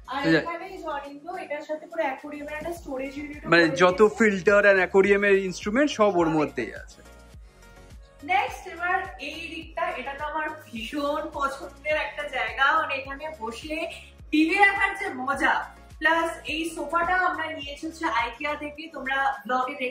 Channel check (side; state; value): both; identical; correlation 1.00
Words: মানে যত ফিল্টার আর অ্যাকোয়ারিয়ামের ইনস্ট্রুমেন্ট সব ওর মধ্যেই আছে। নেক্সট এবার এই দিকটা, এটা তো আমার ভীষণ পছন্দের একটা জায়গা, মানে এখানে বসে টিভি দেখার যে মজা, প্লাস এই সোফাটা আমরা নিয়েছি হচ্ছে আইকিয়া থেকে। তোমরা ব্লগে